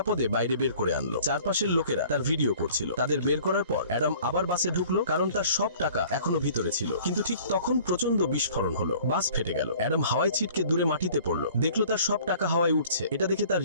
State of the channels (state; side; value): inverted; both; correlation -0.50